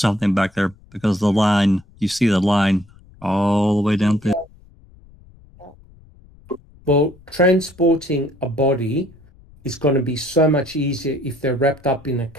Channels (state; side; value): noise; left; rumble, 26 dB below the sound